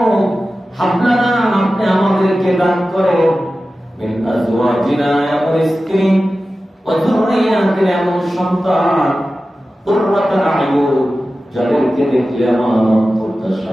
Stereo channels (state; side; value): normal; both; correlation 0.94